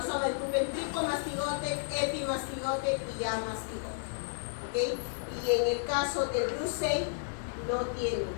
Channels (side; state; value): right; silent; 56 dB below the other